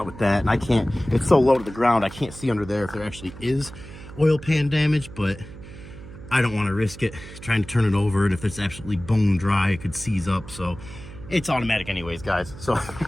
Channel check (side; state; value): right; noise; hum, 15 dB below the sound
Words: with that, and I can't, it's so low to the ground, I can't see under there if there actually is oil pan damage, but I don't want to risk it trying to turn it over, and if it's absolutely bone dry, it could seize up, so it's automatic anyways, guys. So